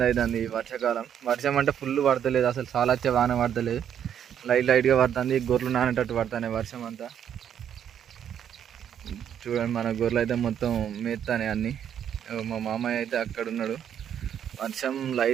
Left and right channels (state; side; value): quieter; left; 9.2 dB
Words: అవుతుంది ఈ వర్షాకాలం. వర్షం అంటే ఫుల్ పడతలేదు, అసలు చాలా వచ్చే వాన పడతలేదు, లైట్గా పడుతుంది. గొర్రెలు నానేటట్టు పడుతున్నాయి వర్షం అంతా. చూడండి మన గొర్రెలు అయితే మొత్తం మేస్తానే అన్నీ. మా మామయ్య అయితే అక్కడ ఉన్నాడు. వర్షం